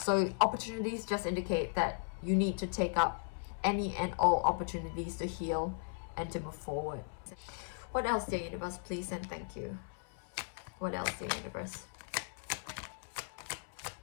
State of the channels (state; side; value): silent; right; 53 dB below the other